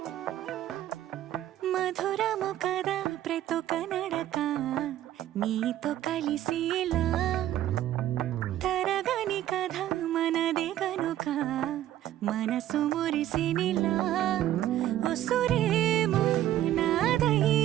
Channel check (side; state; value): left; quieter; 12.8 dB